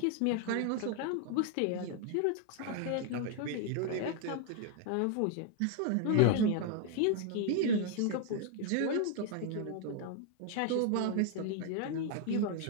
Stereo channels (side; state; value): both; different; correlation 0.00